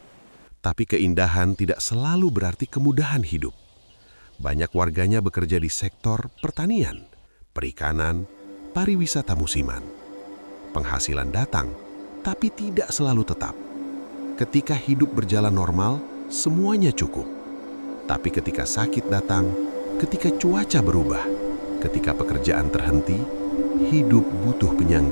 tapi keindahan tidak selalu berarti kemudahan hidup. Banyak warganya bekerja di sektor pertanian, perikanan, pariwisata musiman. Penghasilan datang, tapi tidak selalu tetap. Ketika hidup berjalan normal, semuanya cukup. Tapi ketika sakit datang, ketika cuaca berubah, ketika pekerjaan terhenti, hidup butuh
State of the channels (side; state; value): both; inverted; correlation -1.00